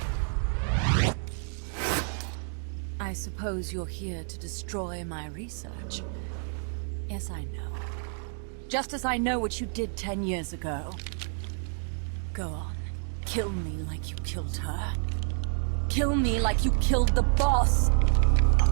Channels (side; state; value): left; silent; 59 dB below the other